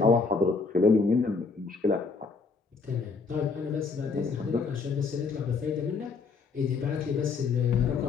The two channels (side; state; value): right; quieter; 4.7 dB